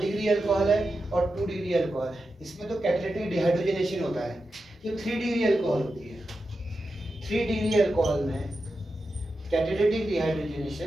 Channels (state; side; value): normal; both; correlation 0.90